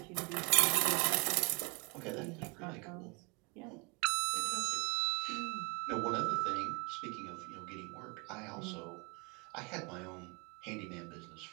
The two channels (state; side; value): quieter; left; 30.9 dB